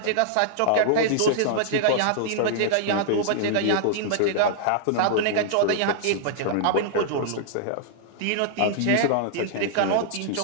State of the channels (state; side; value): different; both; correlation -0.01